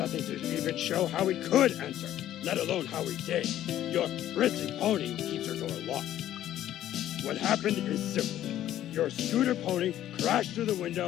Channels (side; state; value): right; quieter; 12.4 dB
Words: to even show how we could enter, let alone how we did. Your prissy pony keeps her door locked. What happened is simple. Your scooter pony crashed through the